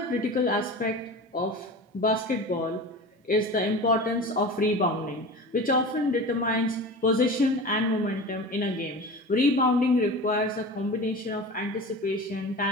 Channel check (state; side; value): normal; both; correlation 0.33